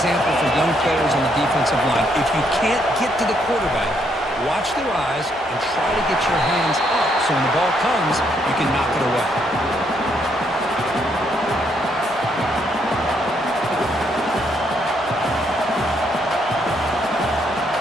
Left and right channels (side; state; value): both; normal; correlation 0.73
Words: for young players on the defensive offensive line. If you can't get to the quarterback, watch their eyes and try to get your hands up so when the ball comes, you can knock it away.